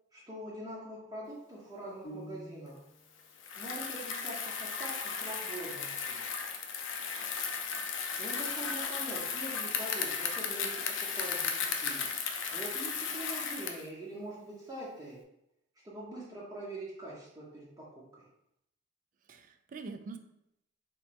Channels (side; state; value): right; quieter; 4.2 dB